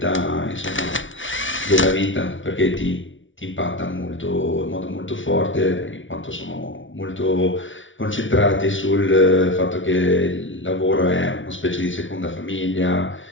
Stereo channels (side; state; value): right; late; 0.56 ms